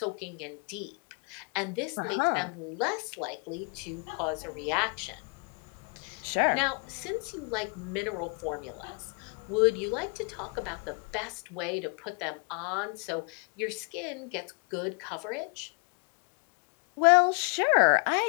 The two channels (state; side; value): quieter; right; 34.8 dB